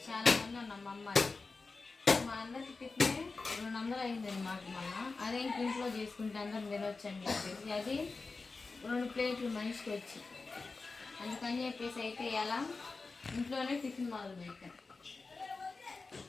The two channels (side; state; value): right; quieter; 4.0 dB